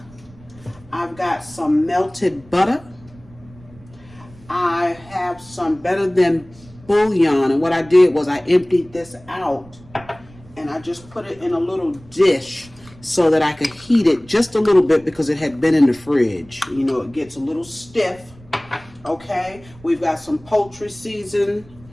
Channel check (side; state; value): right; noise; rumble, 23 dB below the sound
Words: I've got some melted butter, have some Better Than bouillon, and what I did was I emptied this out and I just put it in a little dish so that I could heat it just a little bit because it had been in the fridge. You know, it gets a little stiff. Okay, we've got some poultry